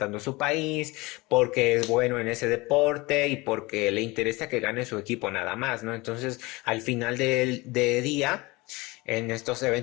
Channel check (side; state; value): right; quieter; 23.1 dB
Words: a su país, porque es bueno en ese deporte y porque le interesa que gane su equipo nada más, ¿no? Entonces, al final del día, en estos